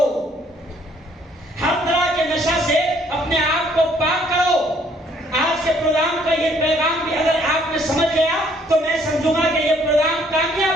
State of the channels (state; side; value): normal; both; correlation 0.64